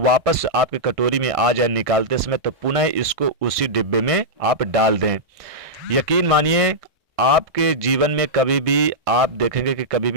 वापस आपके कटोरी में आ जाए निकालते समय, तो पुनः इसको उसी डिब्बे में आप डाल दें। यकीन मानिए, आपके जीवन में कभी भी आप देखेंगे कि कभी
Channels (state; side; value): late; left; 1.5 ms